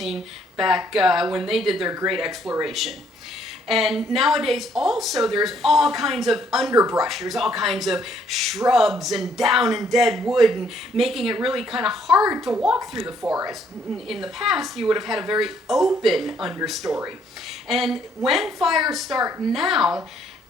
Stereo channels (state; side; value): normal; both; correlation 0.67